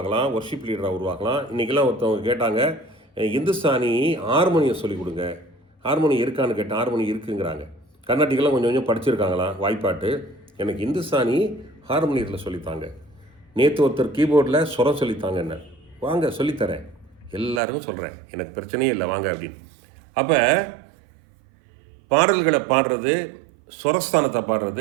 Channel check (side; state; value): left; drops out; at 17.6 s